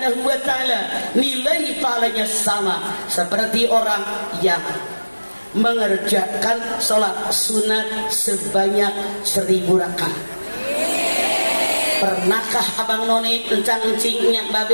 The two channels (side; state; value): both; inverted; correlation -1.00